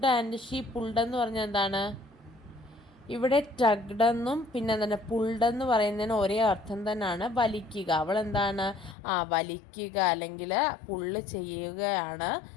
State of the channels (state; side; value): drops out; right; at 9.0 s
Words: and she pulled എന്ന് പറഞ്ഞാൽ എന്താണ്, ഇവിടെ ടഗ്ഡെന്നും പിന്നെ എന്താണ് പുൾഡെന്ന് പറയുന്നതിന് ഒരേ അർത്ഥം തന്നെയാണ്, വലിക്കുക. അവൾ എന്താണ് വലിക്കുക അല്ലെങ്കിൽ പുള്ള് ചെയ്യുകയാണ്